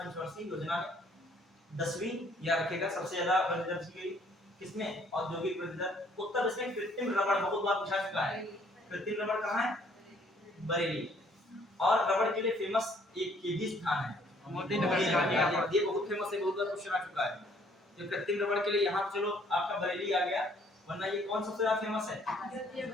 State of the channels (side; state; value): both; normal; correlation 0.62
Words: योजना में, 10वीं या रखेगा सबसे ज्यादा वृद्धि दर की गई किसमें, औद्योगिक वृद्धि दर। उत्तर इसमें कृत्रिम रबड़ बहुत बार पूछा चुका है, कृत्रिम रबड़ कहां है, बरेली। और रबड़ के लिए फेमस एक केजी स्थान है, मोदी नगर, ये बहुत फेमस है, बहुत बार क्वेश्चन आ चुका है। तो कृत्रिम रबड़ के लिए यहाँ चलो आपका बरेली आ गया, वरना ये कौन सबसे ज्यादा फेमस है,